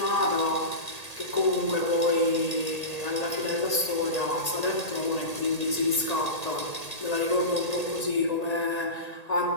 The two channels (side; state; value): right; late; 1.8 ms